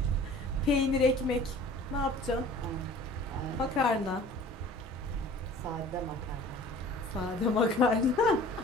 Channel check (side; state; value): both; normal; correlation 0.46